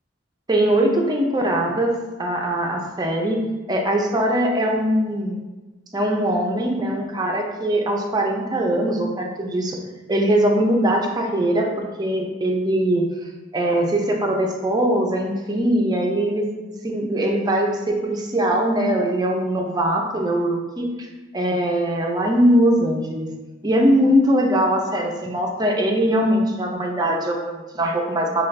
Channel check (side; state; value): both; normal; correlation 0.56